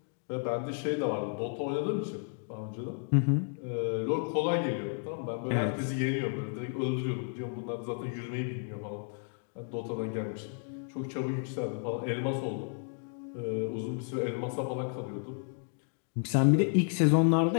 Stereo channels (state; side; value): silent; right; 56 dB below the other